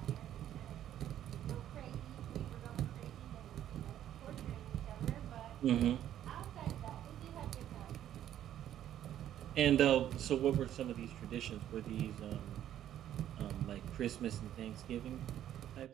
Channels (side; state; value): left; quieter; 11.3 dB